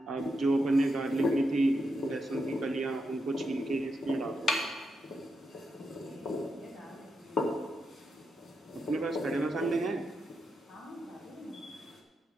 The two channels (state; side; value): normal; both; correlation 0.85